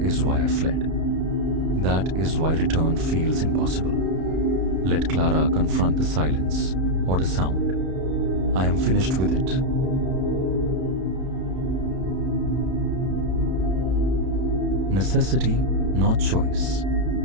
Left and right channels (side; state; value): left; late; 32 ms